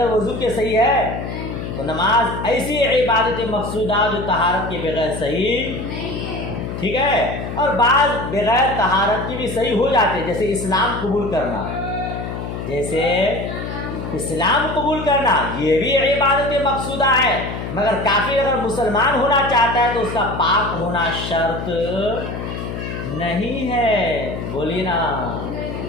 وضو کے صحیح ہے, تو نماز ایسی عبادت مقصودہ جو طہارت کے بغیر صحیح, ٹھیک ہے. اور بعض بغیر طہارت کی بھی صحیح ہو جاتے ہیں, جیسے اسلام قبول کرنا, جیسے اسلام قبول کرنا, یہ بھی عبادت مقصودہ ہے. مگر کافر اگر مسلمان ہونا چاہتا ہے تو اس کا پاک ہونا شرط نہیں ہے. بولیے نا,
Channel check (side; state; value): left; noise; hum, 6 dB below the sound